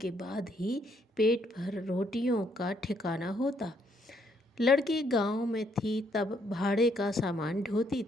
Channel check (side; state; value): both; normal; correlation 0.71